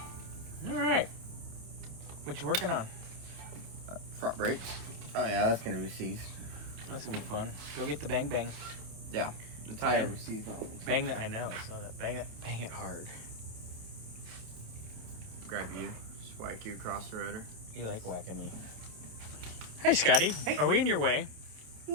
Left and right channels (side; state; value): left; late; 28 ms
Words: All right. What you working on? Front brakes. Oh, yeah, that's going to be seized. That's going to be fun. Go get the bang bang. Yeah, the tire was seized on it. Bang that, I know, I saw that. Bang it hard. Grab you, just whack you across the rotor. You like whacking me. Hey, Scotty. Hey. Are we in your way?